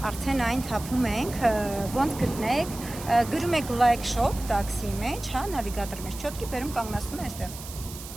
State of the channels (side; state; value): right; noise; hiss, 13 dB below the sound